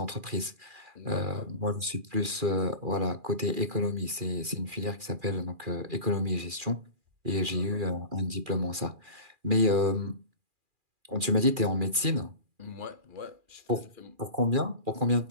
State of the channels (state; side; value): late; left; 2.4 ms